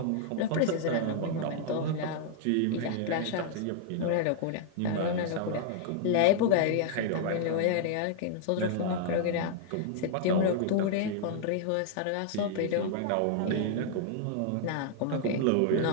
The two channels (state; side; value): different; both; correlation -0.01